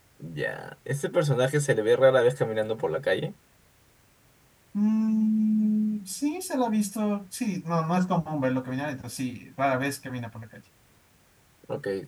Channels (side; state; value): both; identical; correlation 1.00